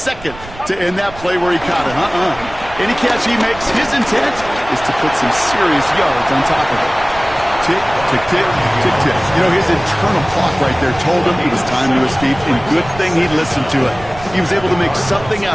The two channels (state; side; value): noise; right; rumble, 16 dB below the sound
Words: to end that play where he caught it. Any catch he makes, his intent is to put some serious yards on top of it. Tick, tick, tick, tick, tick. You know, his internal clock right there told him it was time to escape, and good thing he listened to it. He was able to make something